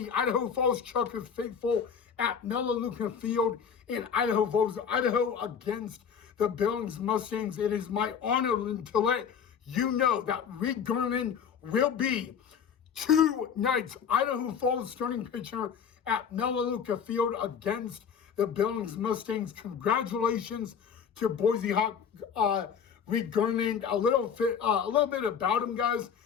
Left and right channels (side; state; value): right; quieter; 7.2 dB